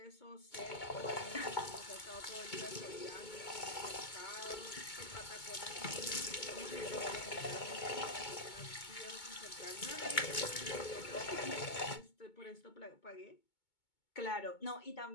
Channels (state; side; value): late; right; 2.2 ms